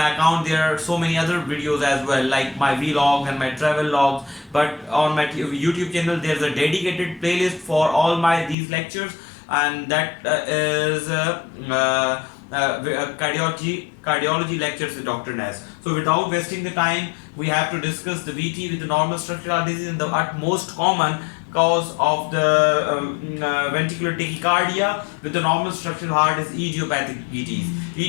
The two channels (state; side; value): drops out; right; at 8.6 s